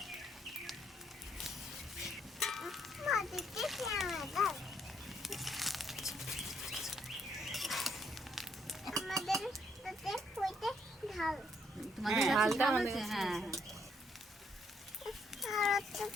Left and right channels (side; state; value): both; normal; correlation 0.71